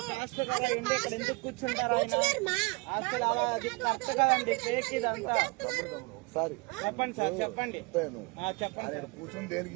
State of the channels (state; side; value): quieter; left; 27.5 dB